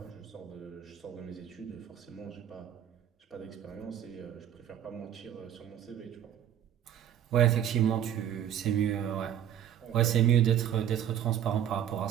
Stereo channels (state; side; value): quieter; left; 10.3 dB